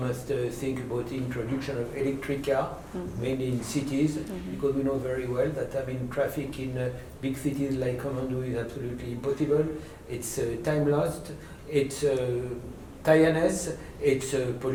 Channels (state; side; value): identical; both; correlation 1.00